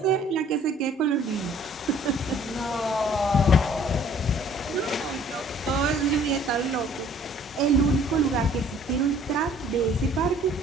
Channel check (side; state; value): both; normal; correlation 0.55